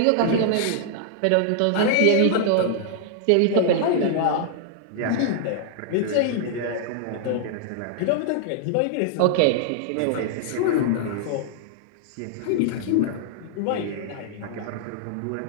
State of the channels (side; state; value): both; different; correlation -0.01